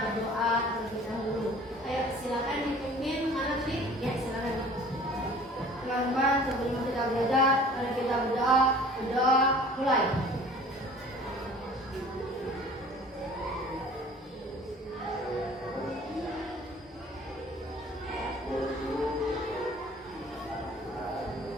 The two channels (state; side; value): normal; both; correlation 0.48